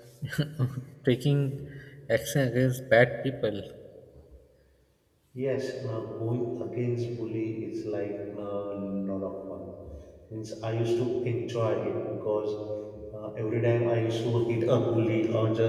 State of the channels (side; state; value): both; identical; correlation 1.00